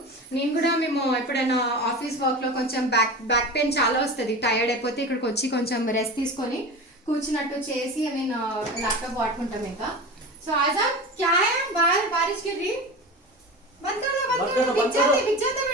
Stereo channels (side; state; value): both; normal; correlation 0.30